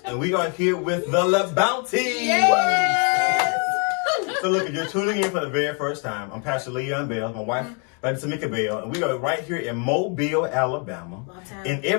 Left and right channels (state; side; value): quieter; right; 37.5 dB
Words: and we are here with the LaBounty. Yes! So look, if you're tuning in for the very first time, I'm Pastor Leon Bell, my wife, TOMIKA Bell, and we are right here in Mobile, Alabama. And